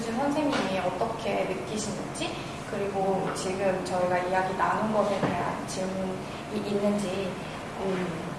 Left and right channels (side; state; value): both; identical; correlation 1.00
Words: 선생님이 어떻게 느끼시는지 그리고 지금 저희가 이야기 나눈 것에 대한 질문이 있는지